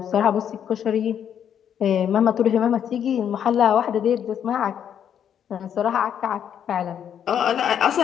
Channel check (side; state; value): right; quieter; 8.9 dB